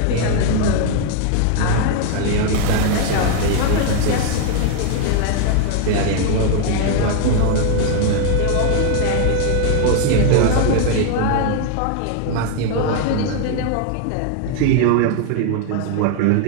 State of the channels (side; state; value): both; different; correlation 0.00